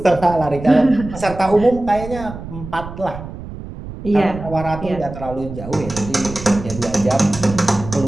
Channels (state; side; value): noise; right; rumble, 11 dB below the sound